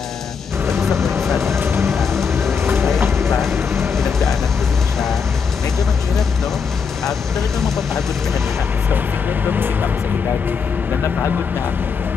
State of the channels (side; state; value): right; quieter; 5.9 dB